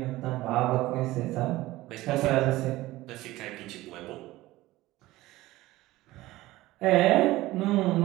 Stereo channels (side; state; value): left; quieter; 17.8 dB